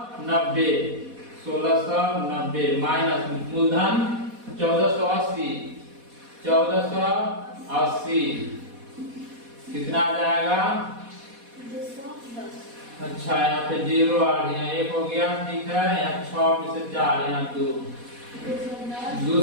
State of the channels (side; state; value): left; late; 4.1 ms